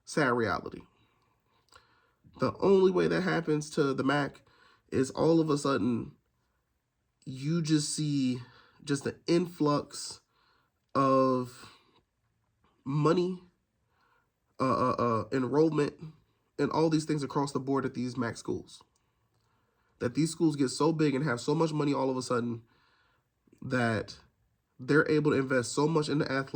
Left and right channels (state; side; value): identical; both; correlation 1.00